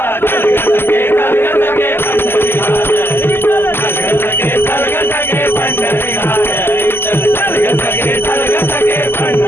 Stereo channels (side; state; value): right; late; 0.11 ms